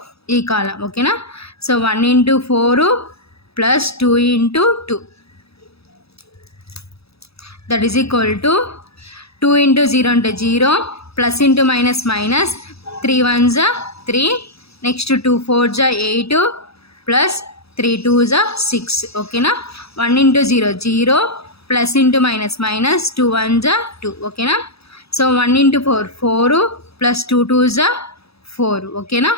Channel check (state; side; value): late; right; 0.77 ms